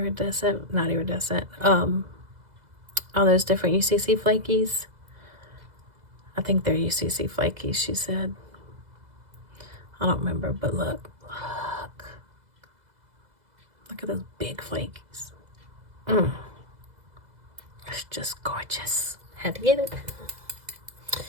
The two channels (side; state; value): left; late; 2.0 ms